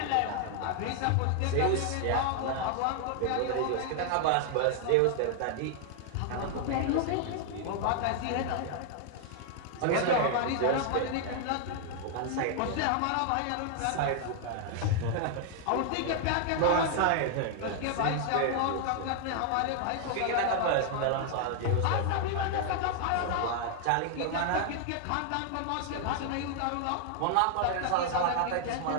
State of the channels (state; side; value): different; both; correlation 0.00